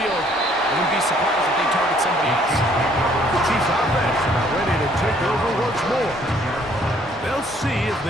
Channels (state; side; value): normal; both; correlation 0.63